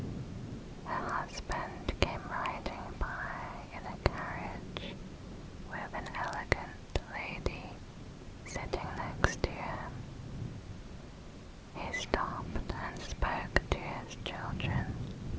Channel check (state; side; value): identical; both; correlation 1.00